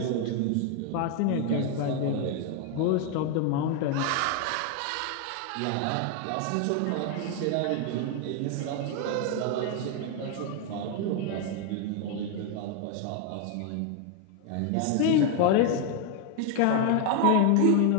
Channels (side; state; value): both; different; correlation 0.01